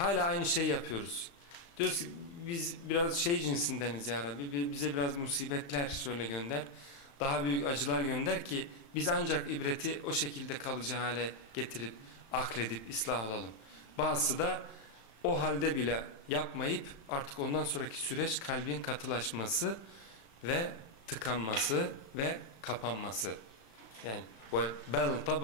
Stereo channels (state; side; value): late; right; 35 ms